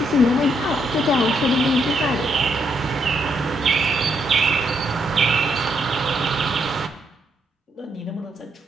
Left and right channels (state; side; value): normal; both; correlation 0.75